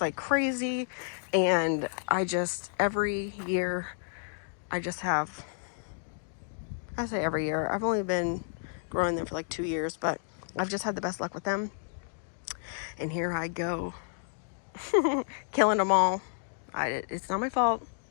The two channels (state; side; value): silent; right; digital silence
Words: like crazy. And every year, I say every year, I've only been growing them for like 2 years, but I've just had the best luck with them. And here I go, killing them all. It's not my fault.